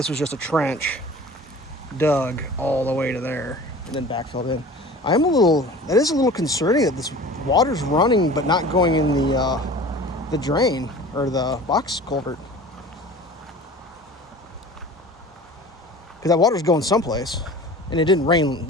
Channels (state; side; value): normal; both; correlation 0.41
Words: was just a trench dug all the way to there and then backfilled in. That is a little concerning that this water's running but not going in the drain or the box culvert. Because that water's going someplace and it didn't rain.